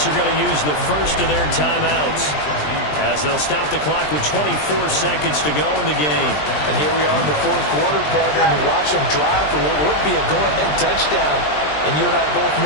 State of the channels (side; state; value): right; late; 20 ms